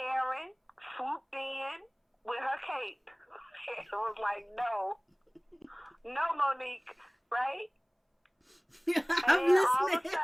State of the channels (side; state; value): both; identical; correlation 1.00